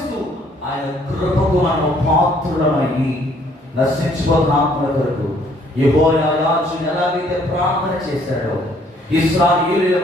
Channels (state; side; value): normal; both; correlation 0.63